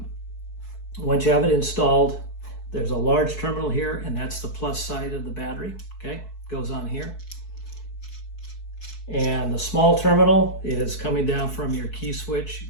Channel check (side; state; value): right; late; 4.6 ms